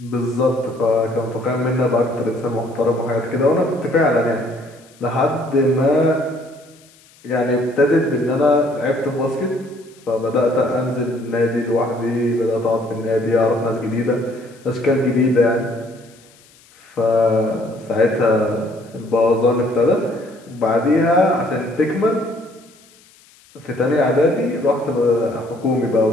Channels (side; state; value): left; noise; hiss, 28 dB below the sound